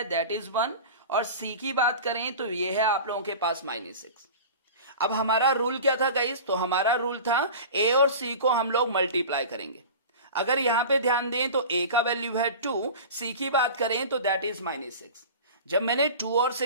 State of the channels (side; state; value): both; inverted; correlation -0.35